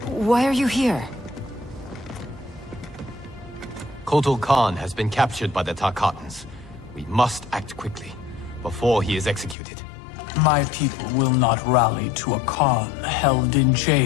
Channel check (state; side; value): drops out; right; at 9.6 s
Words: why are you here? Kotal Khan has been captured by the Tarkatans. We must act quickly, before he is executed. My people will not rally to a Khan held in